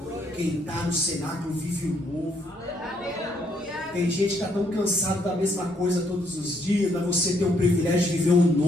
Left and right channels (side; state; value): both; normal; correlation 0.71